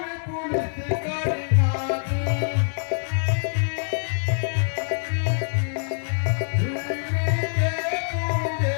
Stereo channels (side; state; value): right; silent; digital silence